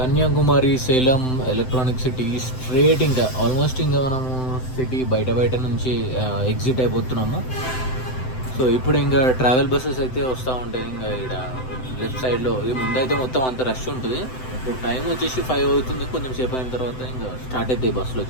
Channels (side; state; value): right; late; 7.8 ms